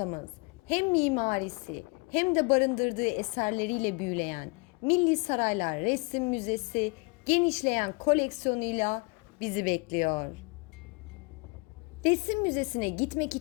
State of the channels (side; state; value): right; quieter; 29.4 dB